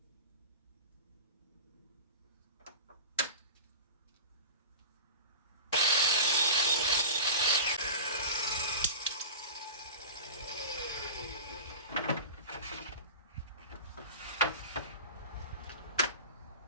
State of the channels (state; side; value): inverted; both; correlation -0.32